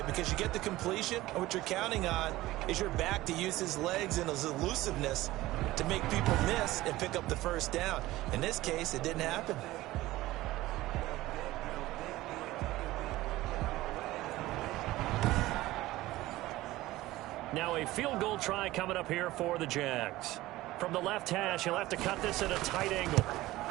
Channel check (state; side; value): quieter; left; 17.3 dB